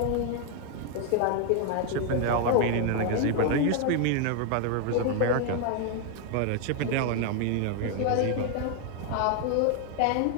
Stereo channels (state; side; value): different; both; correlation 0.00